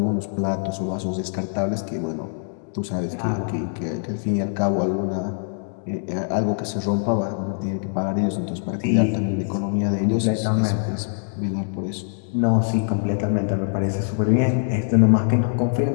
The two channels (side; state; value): right; silent; digital silence